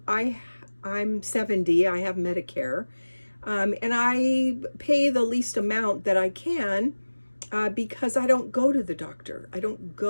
70, I have Medicare, and I pay the least amount that I can because I don't go to the doctor. I don't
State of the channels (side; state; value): both; inverted; correlation -1.00